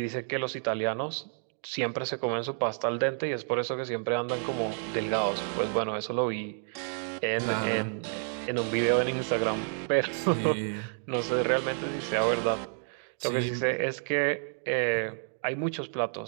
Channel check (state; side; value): silent; left; 56 dB below the other